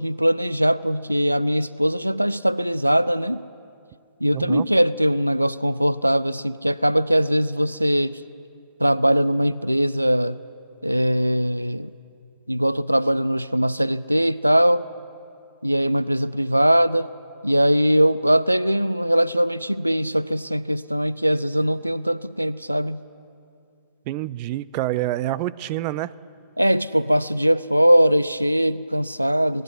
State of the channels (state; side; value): inverted; both; correlation -0.96